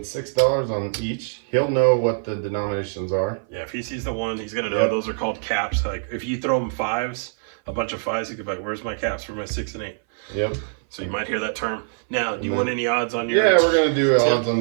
$6 on each. He'll know what the denominations are. Yeah, if he sees the one, he's going to know those are called caps. Like if you throw him fives, a bunch of fives, he could be like, where's my caps for my 6 and 8? Yep. So you might hear that term. Now, do you want any odds on your... Yeah, we're going to do odds on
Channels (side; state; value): left; silent; 59 dB below the other